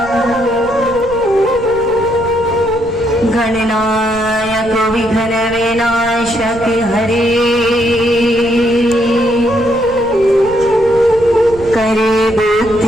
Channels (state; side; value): noise; left; rumble, 17 dB below the sound